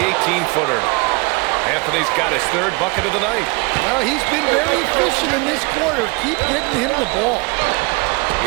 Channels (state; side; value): quieter; left; 27.9 dB